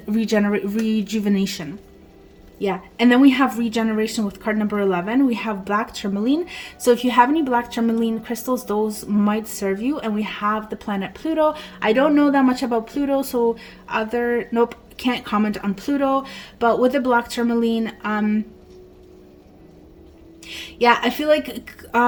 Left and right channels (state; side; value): identical; both; correlation 1.00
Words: rejuvenation. Yeah, and then we have regeneration with card number 11. We have black tourmaline. So if you have any black tourmaline crystals, those might serve you. And we have the planet Pluto. I don't know that much about Pluto, so nope, can't comment on Pluto. But with the black tourmaline, yeah, I feel like